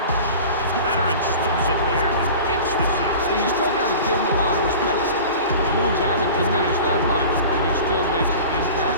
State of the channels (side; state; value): both; inverted; correlation -0.38